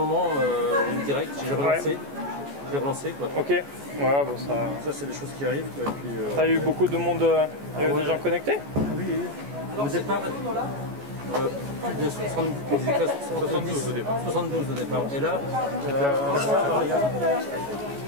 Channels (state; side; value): late; left; 14 ms